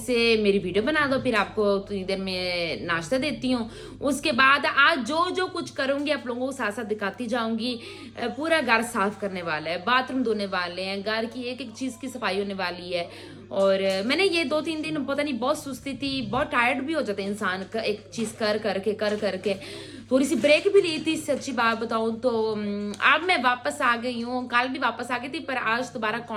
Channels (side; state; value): both; identical; correlation 1.00